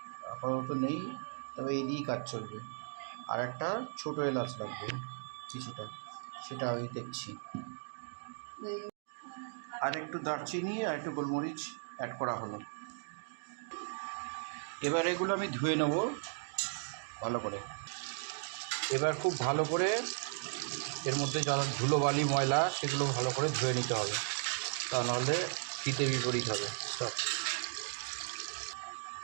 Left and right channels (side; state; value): left; silent; digital silence